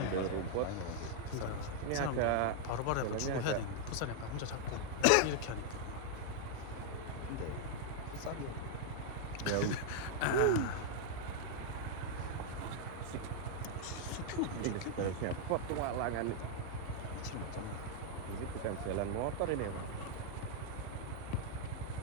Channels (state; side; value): different; both; correlation 0.00